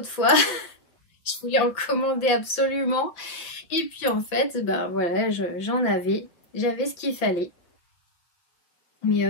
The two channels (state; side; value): late; right; 5.8 ms